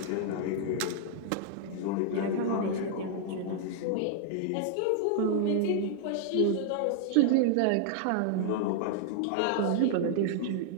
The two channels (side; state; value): both; different; correlation -0.01